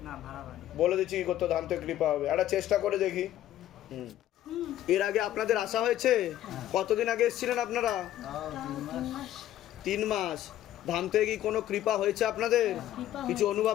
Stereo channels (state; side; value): quieter; right; 12.8 dB